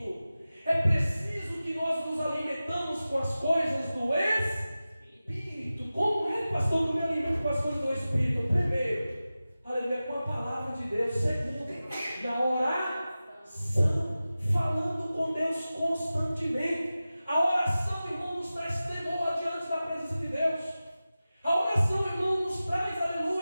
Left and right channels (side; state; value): both; inverted; correlation -0.95